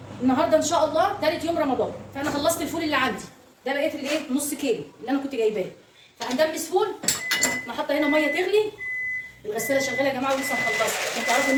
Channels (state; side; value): identical; both; correlation 1.00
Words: النهارده ان شاء الله ثالث يوم رمضان، فانا خلصت الفول اللي عندي ده، بقيت الايه نص كيلو اللي انا كنت جايباه، فهندمس فول. انا حاطه هنا ميه تغلي، الغساله شغاله يا جماعه ولسه مخلصه عشان تعرفوا ان